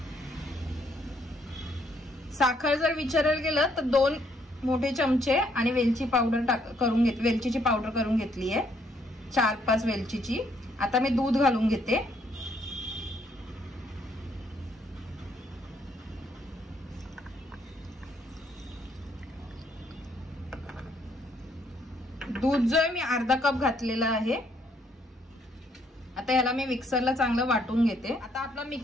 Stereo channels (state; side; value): normal; both; correlation 0.70